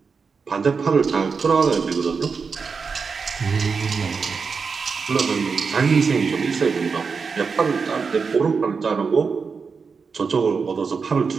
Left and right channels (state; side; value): quieter; left; 5.2 dB